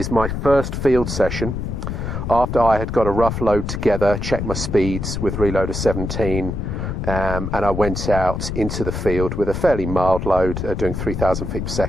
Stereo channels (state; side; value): noise; left; rumble, 4 dB below the sound